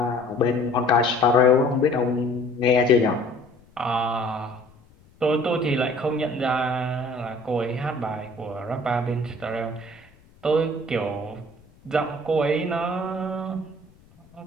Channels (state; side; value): noise; left; rumble, 28 dB below the sound